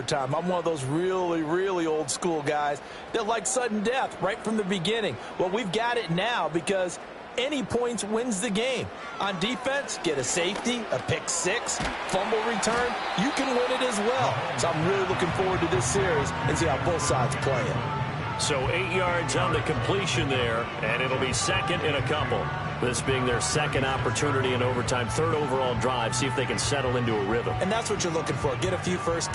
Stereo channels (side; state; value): both; identical; correlation 1.00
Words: I'm one of those really, really old school guys that like sudden death right from the beginning. Well, we've got it now because any points wins the game. On defense, get a safety, a pick 6, fumble return, you can win it as well. So I'm really looking forward to this series and see how both sides play it. So 8 yards on the completion there, and it'll be 2nd and a couple. This being their 2nd opportunity in overtime, 3rd overall drive, see if they can settle into a rhythm. And that's what you're looking for. Get a few first